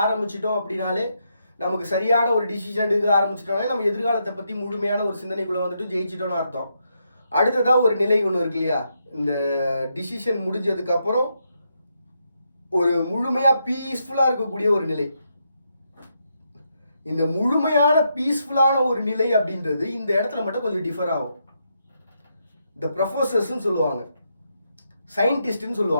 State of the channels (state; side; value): inverted; both; correlation -0.80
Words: ஆரம்பிச்சிட்டோம் அப்படின்னாலே நமக்கு சரியான ஒரு டிசிஷன் எடுக்க ஆரம்பிச்சிட்டோம்னா நம்ம எதிர்காலத்தை பற்றி முழுமையான ஒரு சிந்தனைக்குள்ளே வந்துட்டு ஜெயிச்சிட்டோன்னு அர்த்தம். அடுத்ததாக ஒரு நிலை ஒன்று இருக்கு இல்லையா, இந்த டிசிஷன் முடிஞ்சதுக்கப்புறம் ஒரு முழுமையாக பீஸ்ஃபுல்லாக இருக்கக்கூடிய ஒரு நிலை. இந்த முழுமையான பீஸ்ஃபுல்லான ஒரு நிலை அப்படின்றது இந்த இடத்துல மட்டும் கொஞ்சம் டிஃபர் ஆகும். இந்த ப்ரொஃபஸர்ஸ்ன்னு சொல்லுவாங்க, சயின்டிஸ்ட்னு